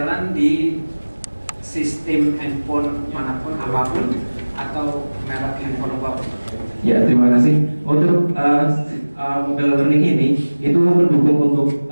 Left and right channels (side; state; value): both; inverted; correlation -1.00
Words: di sistem handphone manapun apapun atau merek handphone apapun. Ya, terima kasih. Untuk mobile learning ini itu mendukung untuk